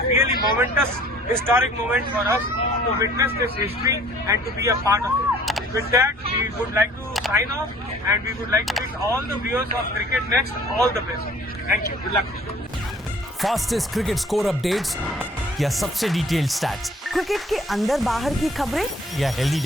really momentous, historic moment for us to witness this history and to be a part of it. With that, we would like to sign off, and we would like to wish all the viewers of Cricket Next all the best. Thank you. Good luck. Fastest cricket score updates या सबसे detailed stats, cricket के अंदर बाहर की खबरें या healthy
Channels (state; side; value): normal; both; correlation 0.53